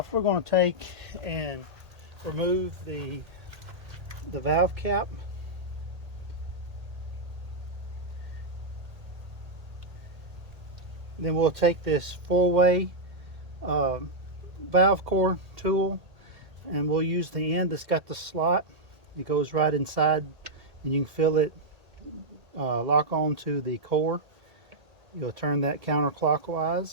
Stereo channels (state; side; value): late; left; 1.8 ms